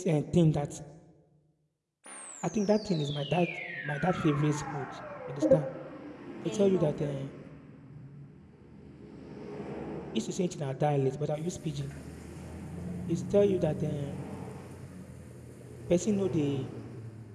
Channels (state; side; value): identical; both; correlation 1.00